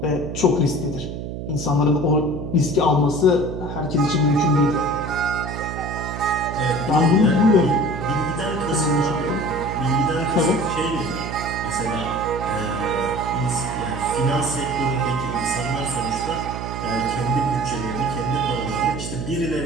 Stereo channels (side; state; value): right; noise; hum, 7 dB below the sound